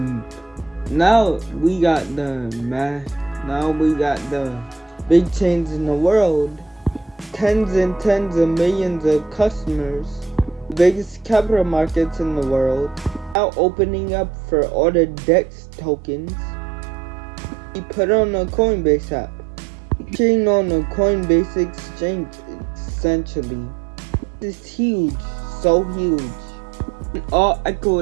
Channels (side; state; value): left; drops out; at 13.4 s